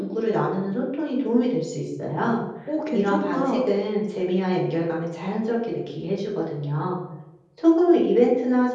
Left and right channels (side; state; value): both; identical; correlation 1.00